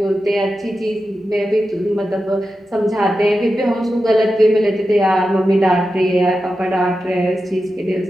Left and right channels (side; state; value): both; normal; correlation 0.91